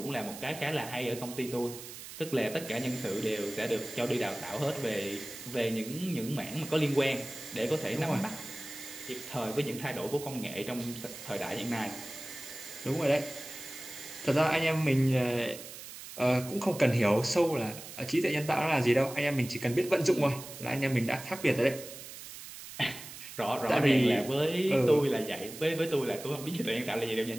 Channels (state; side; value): noise; right; hiss, 13 dB below the sound